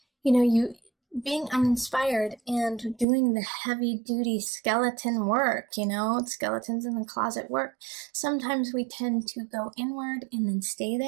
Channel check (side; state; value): left; drops out; at 3.1 s